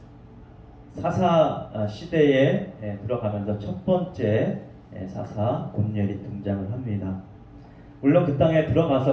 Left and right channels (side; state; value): both; identical; correlation 1.00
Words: 사사 시대에 들어가면서 첫 번째 사사 온니엘이 등장을 합니다. 물론 그 땅에